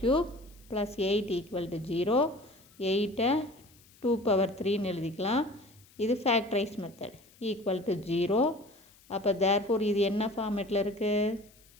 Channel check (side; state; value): left; noise; hiss, 28 dB below the sound